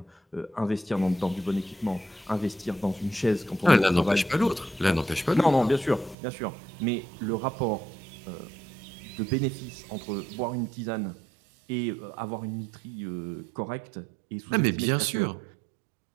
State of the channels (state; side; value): drops out; left; at 6.2 s